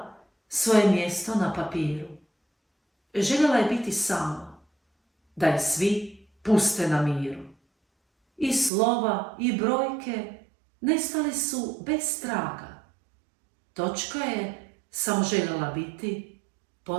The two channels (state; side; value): drops out; left; at 8.7 s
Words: svoje mjesto na papiru. Željela je biti sama, da je svi puste na miru. I slova i brojke nestali su bez traga. Točka je samo željela biti